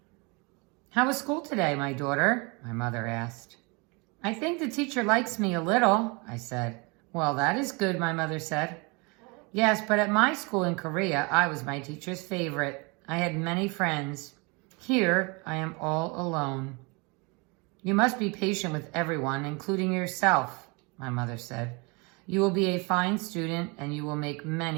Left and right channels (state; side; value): quieter; left; 29.3 dB